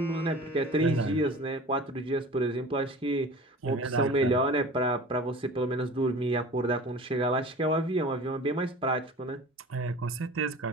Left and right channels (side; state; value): both; normal; correlation 0.40